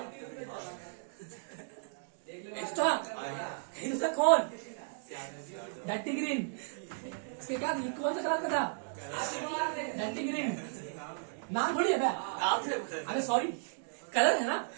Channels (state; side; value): silent; left; digital silence